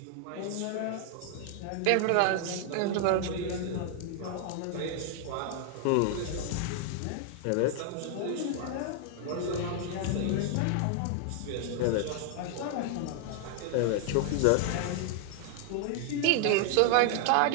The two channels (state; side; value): different; both; correlation 0.00